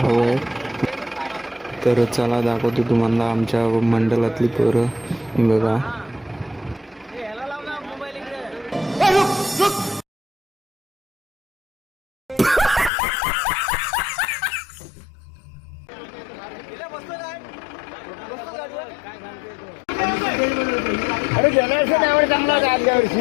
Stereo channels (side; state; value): right; drops out; at 12.9 s